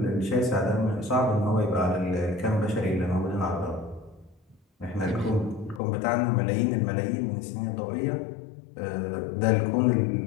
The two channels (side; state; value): right; drops out; at 5.8 s